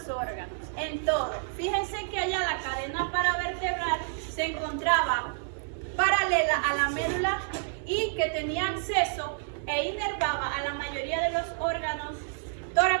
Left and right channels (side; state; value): left; silent; digital silence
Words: los órganos, en todo. Fíjense que allá la cadena paravertebral se encontraba paralela a la médula y que tenía acceso e inervaba a la mayoría de los órganos